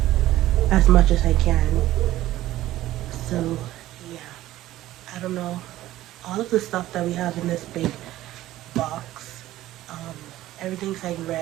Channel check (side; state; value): left; quieter; 15.0 dB